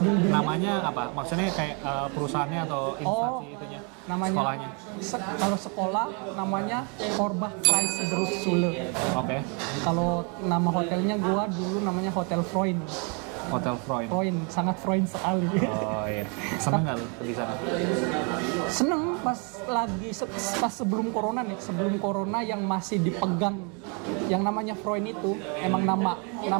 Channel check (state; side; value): quieter; left; 35.3 dB